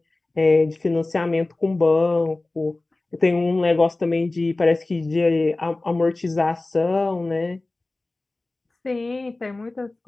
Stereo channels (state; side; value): quieter; right; 3.0 dB